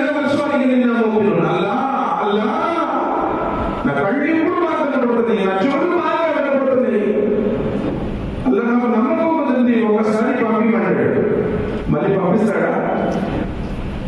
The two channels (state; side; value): identical; both; correlation 1.00